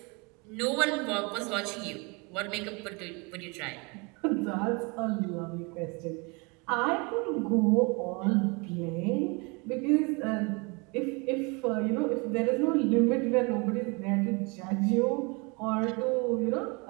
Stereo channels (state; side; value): quieter; left; 29.8 dB